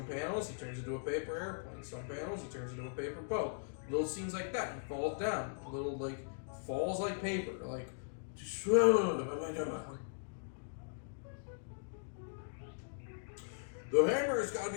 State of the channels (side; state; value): right; silent; digital silence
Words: panels, he turns into a paper airplane. Some panels, he turns into a paper boat. Little scenes like that, he falls down. Little, like, falls like paper. Like, the hammer has got to